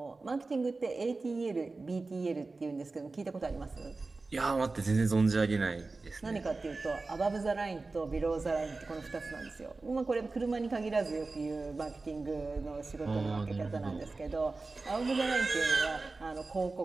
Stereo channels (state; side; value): quieter; left; 3.6 dB